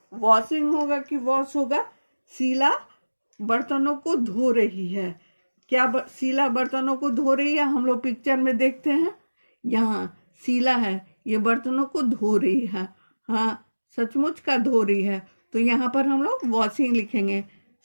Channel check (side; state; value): both; inverted; correlation -1.00